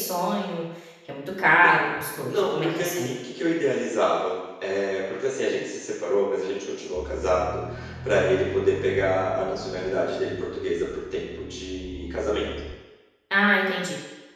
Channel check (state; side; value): identical; both; correlation 1.00